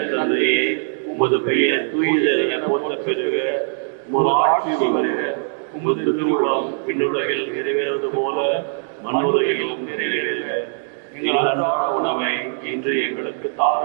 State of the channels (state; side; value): silent; left; digital silence